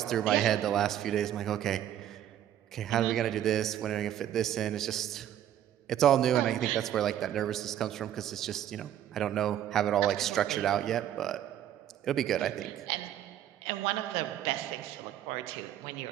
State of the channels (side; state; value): left; quieter; 11.2 dB